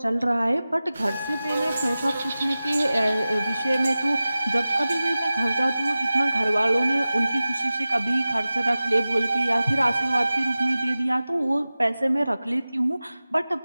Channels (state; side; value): inverted; both; correlation -0.96